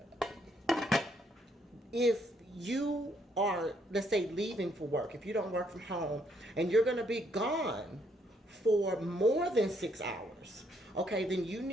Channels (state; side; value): normal; both; correlation 0.72